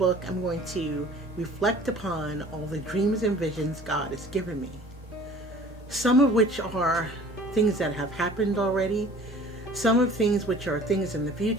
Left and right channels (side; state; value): both; normal; correlation 0.48